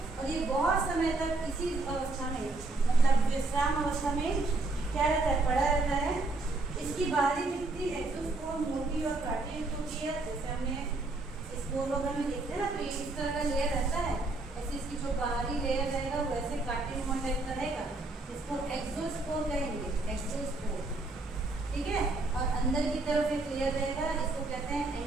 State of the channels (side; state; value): left; quieter; 3.2 dB